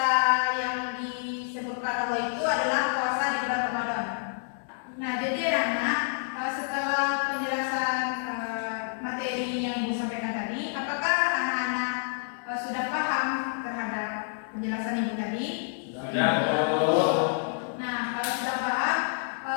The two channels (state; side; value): silent; right; digital silence